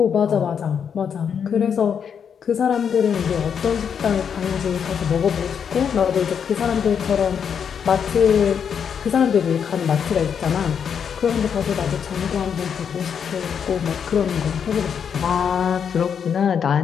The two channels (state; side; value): quieter; right; 7.4 dB